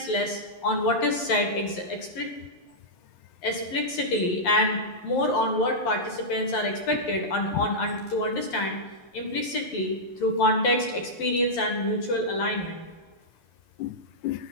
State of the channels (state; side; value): late; right; 11 ms